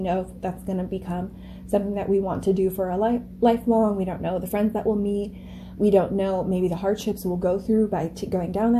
if that's going to become something that we want to do for a lifelong. We don't know the friends that we'll meet. We don't know maybe the hardships we'll go through by going down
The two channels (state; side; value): identical; both; correlation 1.00